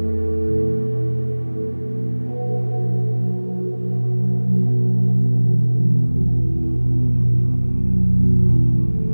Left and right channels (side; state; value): both; inverted; correlation -1.00